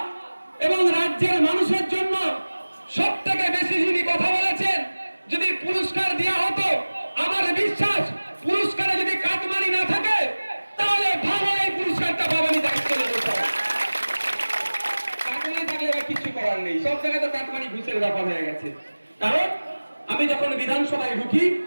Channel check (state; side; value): inverted; both; correlation -1.00